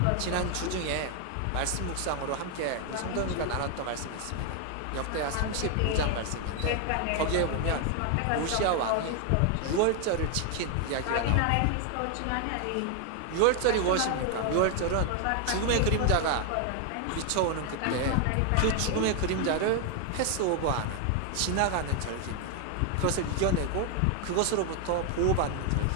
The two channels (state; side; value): different; both; correlation 0.01